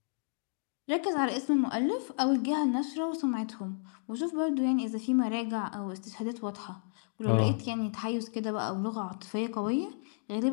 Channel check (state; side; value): silent; right; digital silence